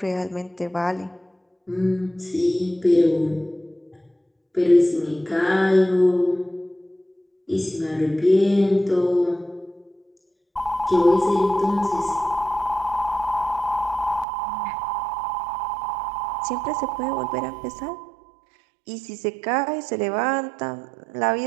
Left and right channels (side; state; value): left; drops out; at 14.2 s